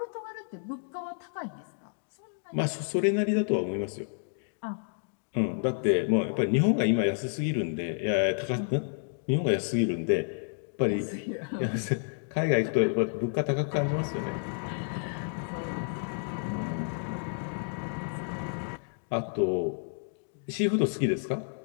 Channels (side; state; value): right; silent; digital silence